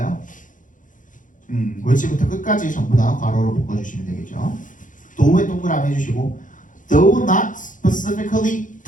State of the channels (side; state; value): right; late; 0.38 ms